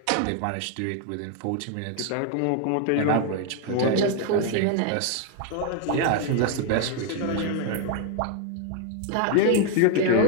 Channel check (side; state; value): both; different; correlation 0.01